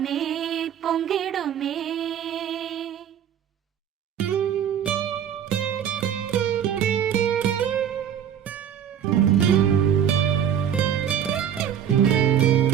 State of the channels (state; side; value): quieter; left; 9.1 dB